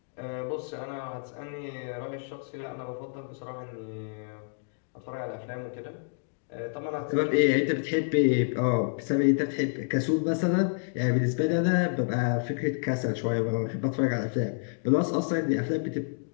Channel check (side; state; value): right; silent; digital silence